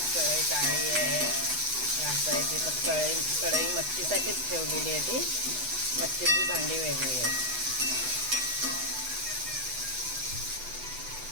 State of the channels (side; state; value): left; late; 8.0 ms